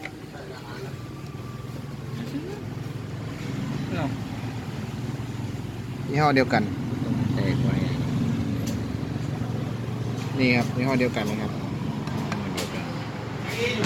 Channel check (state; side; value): identical; both; correlation 1.00